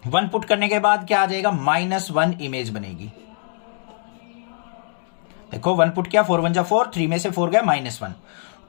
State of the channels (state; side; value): silent; right; digital silence